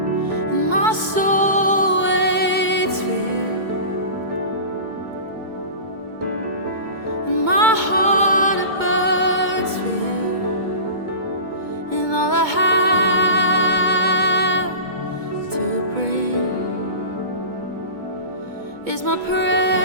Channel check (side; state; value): left; late; 2.2 ms